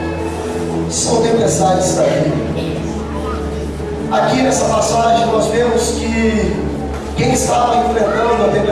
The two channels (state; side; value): identical; both; correlation 1.00